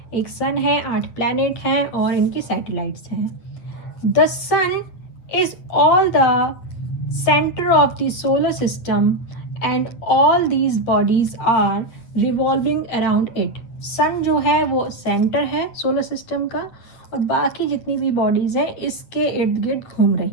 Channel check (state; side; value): late; right; 8.8 ms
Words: एक सन है, 8 प्लैनेट हैं और इनकी सैटेलाइट्स हैं। The sun is all the center of the solar system and all these bodies are revolving around it. सन जो है वो सेंटर है सोलर सिस्टम का और बाकी जितनी भी बॉडीज हैं इसके इर्द गिर्द घूम